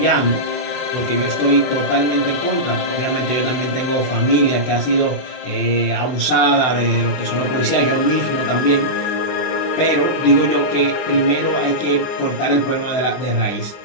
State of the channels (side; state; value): right; late; 24 ms